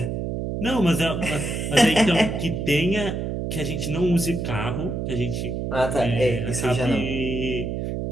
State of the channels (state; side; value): noise; right; hum, 3 dB below the sound